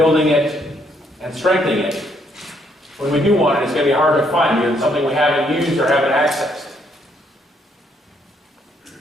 it and strengthening it, when we do want it, it's going to be hard to find because it's something we haven't used or haven't accessed.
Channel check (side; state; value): both; normal; correlation 0.71